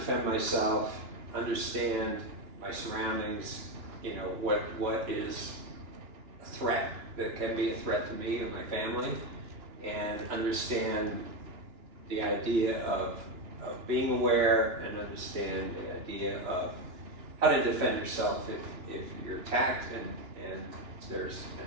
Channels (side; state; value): left; late; 2.9 ms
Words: myself, understand my surroundings, what is a threat that can be a threat to me and my family, and understand the idea of being aware and understand the idea of how to defend yourself if you're attacked and there's